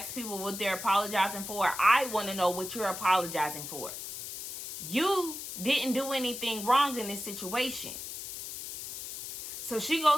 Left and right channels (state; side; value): noise; left; hiss, 8 dB below the sound